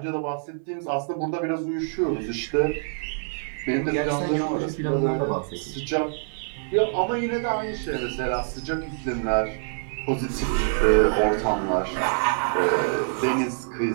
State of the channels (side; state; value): left; silent; digital silence